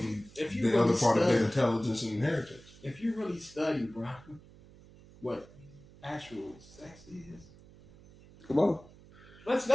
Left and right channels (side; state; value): right; noise; hum, 23 dB below the sound